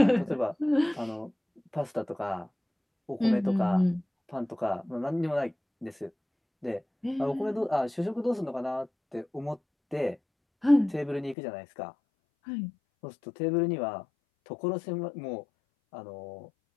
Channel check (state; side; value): drops out; right; at 11.4 s